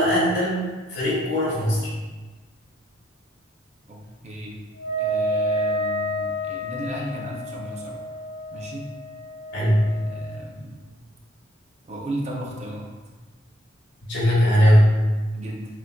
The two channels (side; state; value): both; normal; correlation 0.70